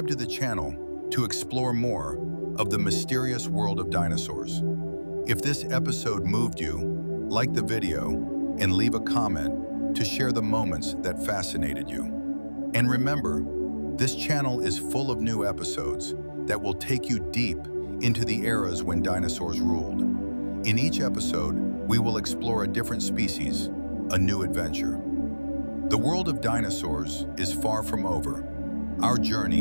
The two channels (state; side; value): inverted; both; correlation -1.00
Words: to the channel to explore more of the mysterious world of dinosaurs. If this episode moved you, like the video and leave a comment to share the moments that fascinated you. And remember, this channel is full of new episodes that will take you deep into the eras when dinosaurs ruled. In each episode, we will explore a different species, a new adventure. The world of dinosaurs is far from over. Our